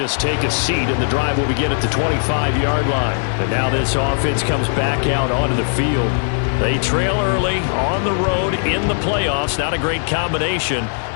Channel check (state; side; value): silent; right; digital silence